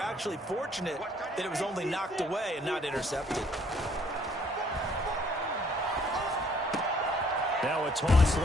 fortunate that it was only knocked away and not intercepted. Now a toss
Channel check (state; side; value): normal; both; correlation 0.62